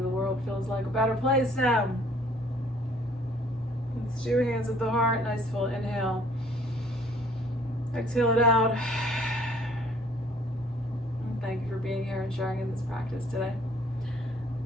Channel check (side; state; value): both; normal; correlation 0.58